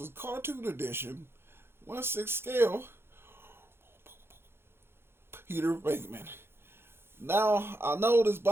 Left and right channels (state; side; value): late; left; 0.11 ms